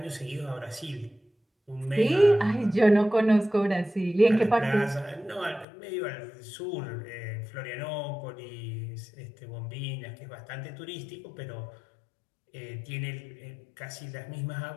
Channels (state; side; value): drops out; right; at 5.7 s